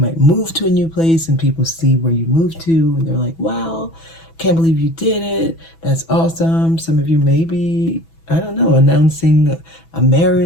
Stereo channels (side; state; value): right; late; 6.1 ms